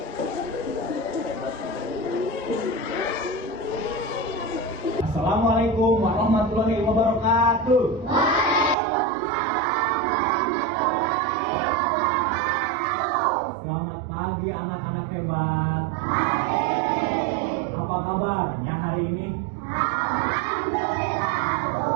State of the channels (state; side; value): drops out; left; at 8.8 s